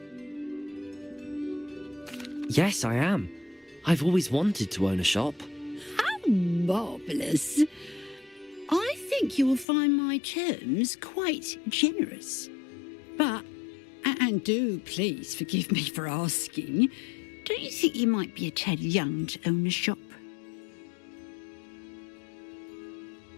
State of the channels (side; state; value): right; drops out; at 9.7 s